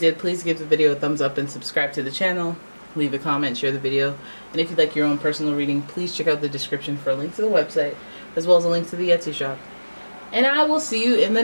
please give the video a thumbs up and subscribe to the channel. Leave a comment, share the video. And if you'd like your own personal reading, please check out the description for a link to the website, as well as a link to the Etsy shop. And I will see you in the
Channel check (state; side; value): inverted; both; correlation -1.00